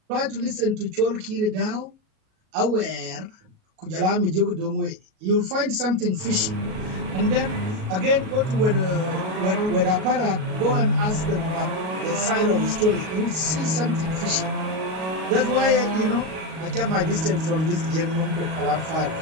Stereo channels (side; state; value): left; late; 37 ms